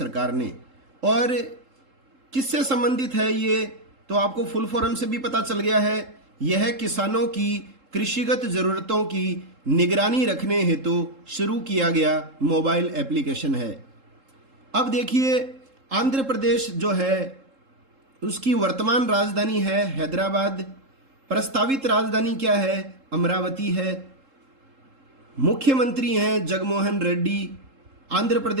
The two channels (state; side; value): late; left; 3.7 ms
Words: ने। और किससे संबंधित है ये, तो आपको फुल फॉर्म से भी पता चल गया है। यह किसानों की कृषिगत जरूरतों की निगरानी रखने हेतु शुरू किया गया मोबाइल एप्लीकेशन है। अब देखिए, आंध्र प्रदेश जो है उसकी वर्तमान राजधानी है हैदराबाद, प्रस्तावित राजधानी क्या है? अमरावती है। मुख्यमंत्री हैं जगनमोहन रेड्डी। आंध्र